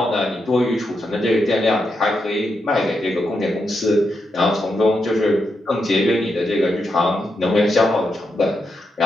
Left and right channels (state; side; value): normal; both; correlation 0.84